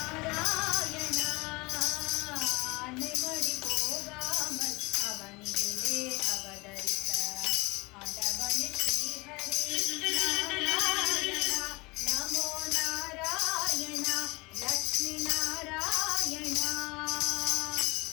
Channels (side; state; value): right; quieter; 24.8 dB